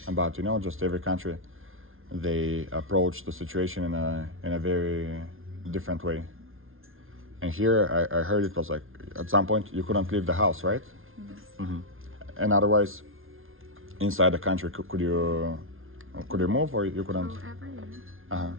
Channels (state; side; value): late; left; 0.60 ms